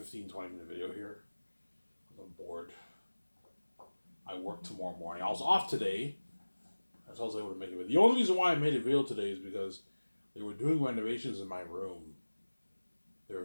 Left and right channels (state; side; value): inverted; both; correlation -1.00